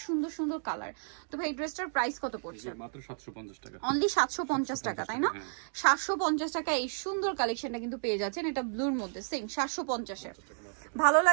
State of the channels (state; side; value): silent; left; digital silence